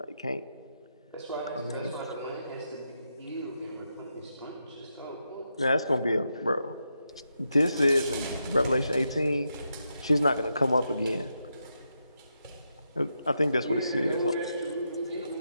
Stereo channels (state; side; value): inverted; both; correlation -0.84